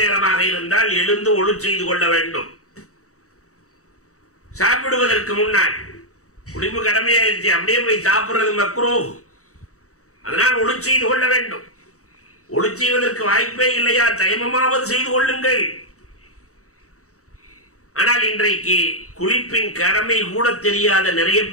நேரமாக இருந்தால் எழுந்து ஒழு செய்து கொள்ள வேண்டும். சாப்பிடுவதற்கு முன்னால் குளிப்பு கடமையாயிருச்சு, அப்படியே போய் சாப்பிடுறது மக்ரூஹ். அதனால் ஒழு செய்து கொள்ள வேண்டும். ஒழு செய்வதற்கு வாய்ப்பே இல்லையா, தயமமாவது செய்து கொள்ளுங்கள். ஆனால் இன்றைக்கு குளிப்பின் கடமை கூட தெரியாத நிறைய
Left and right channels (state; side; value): late; right; 0.65 ms